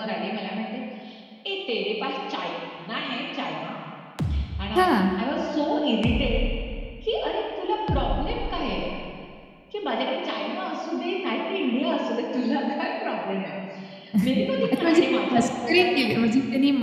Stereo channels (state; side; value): identical; both; correlation 1.00